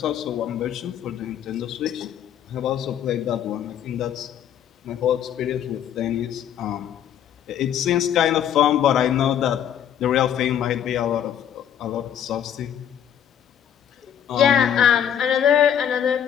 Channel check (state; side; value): quieter; right; 9.5 dB